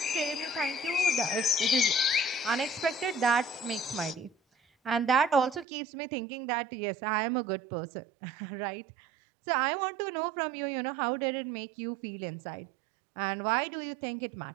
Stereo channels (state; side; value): drops out; left; at 5.7 s